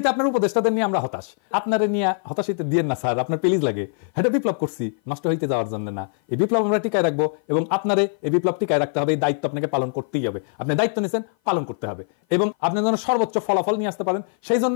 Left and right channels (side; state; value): right; silent; 57 dB below the other